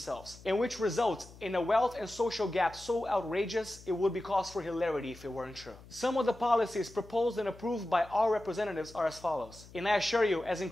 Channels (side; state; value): left; noise; hum, 20 dB below the sound